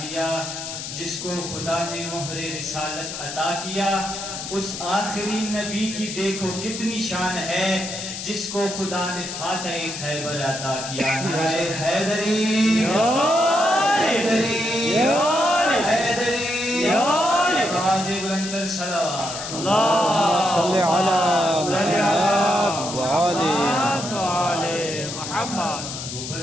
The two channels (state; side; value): noise; left; hiss, 7 dB below the sound